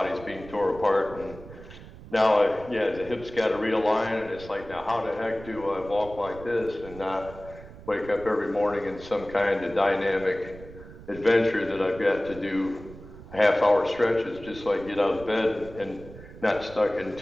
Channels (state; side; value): noise; right; rumble, 16 dB below the sound